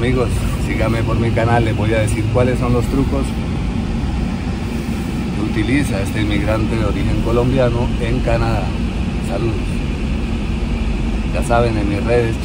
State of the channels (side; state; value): both; identical; correlation 1.00